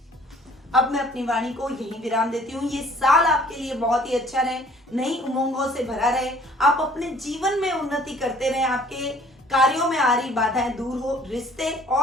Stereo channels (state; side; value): normal; both; correlation 0.55